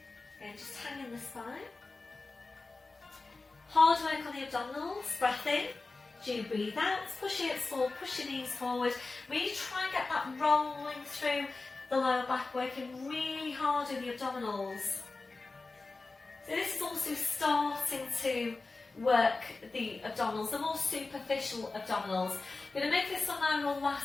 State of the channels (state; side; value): quieter; right; 3.6 dB